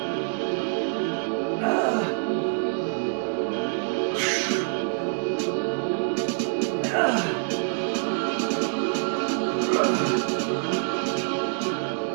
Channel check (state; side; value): silent; left; digital silence